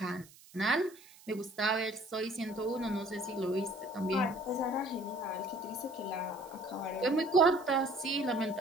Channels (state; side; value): noise; right; hiss, 23 dB below the sound